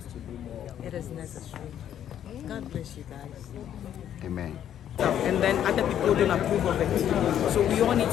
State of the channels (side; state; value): right; quieter; 10.2 dB